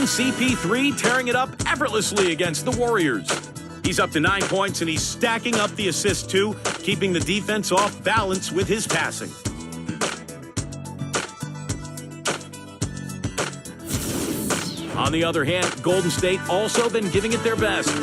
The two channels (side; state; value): both; identical; correlation 1.00